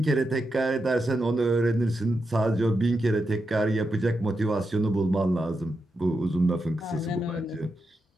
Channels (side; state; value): both; normal; correlation 0.86